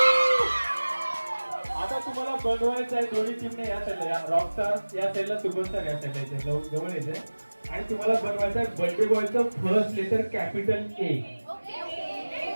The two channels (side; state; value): both; inverted; correlation -1.00